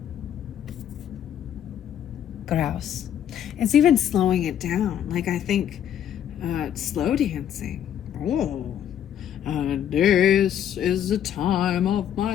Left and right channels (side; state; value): right; quieter; 9.8 dB